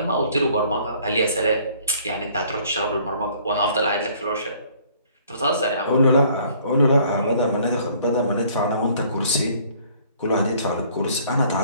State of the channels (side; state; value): both; inverted; correlation -0.58